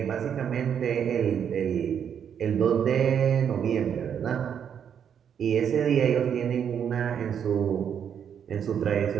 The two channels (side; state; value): left; quieter; 8.2 dB